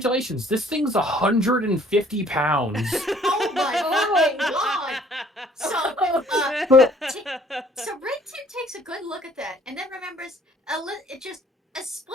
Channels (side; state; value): both; normal; correlation 0.58